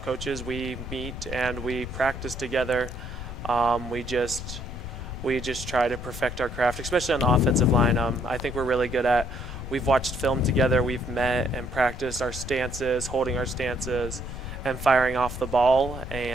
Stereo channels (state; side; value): noise; left; rumble, 9 dB below the sound